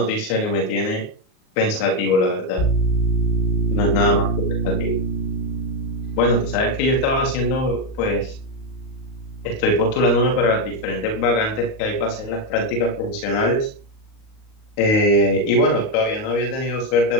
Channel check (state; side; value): late; right; 38 ms